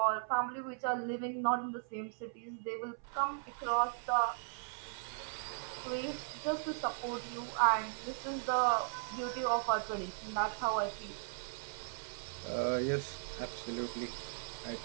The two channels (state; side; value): silent; left; 53 dB below the other